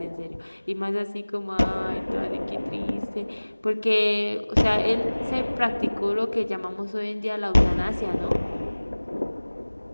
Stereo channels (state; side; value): inverted; both; correlation -1.00